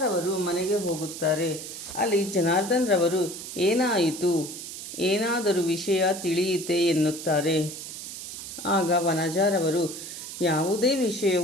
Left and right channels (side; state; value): right; noise; hiss, 10 dB below the sound